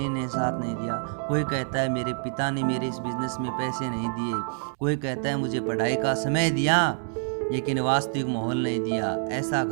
ने साथ नहीं दिया, कोई कहता है मेरे पिता ने मेरे इस बिजनेस में पैसे नहीं दिए, कोई कहता है मुझे पढ़ाई का समय दिया लेकिन वास्तविक माहौल नहीं दिया, ऐसा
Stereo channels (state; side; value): silent; left; 60 dB below the other